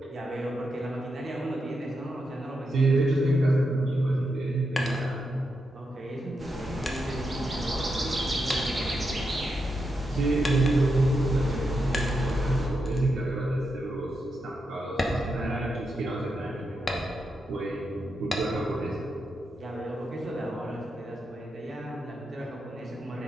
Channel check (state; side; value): normal; both; correlation 0.85